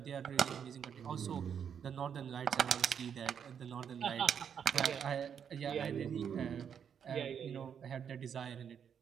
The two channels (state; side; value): quieter; left; 7.8 dB